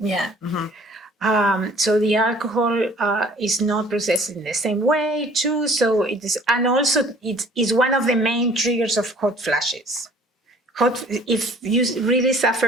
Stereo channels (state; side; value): normal; both; correlation 0.53